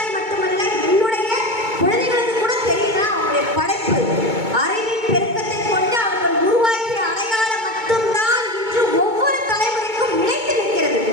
மட்டுமல்ல என்னுடைய குழந்தைகளுக்கு கூட தெரியுதா அவங்களுடைய படைப்பு. அறிவின் பெருக்கத்தை கொண்டு அவர்கள் உருவாக்கிய அடையாளம் மட்டும்தான் இன்று ஒவ்வொரு தலைமுறைக்கும் நிலைத்து நிற்கிறது.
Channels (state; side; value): late; left; 2.2 ms